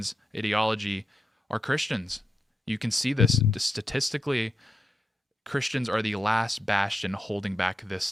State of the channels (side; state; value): both; normal; correlation 0.86